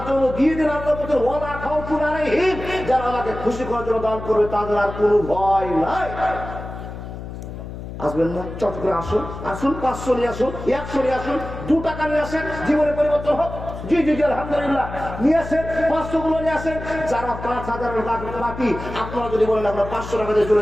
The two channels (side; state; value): left; noise; hum, 10 dB below the sound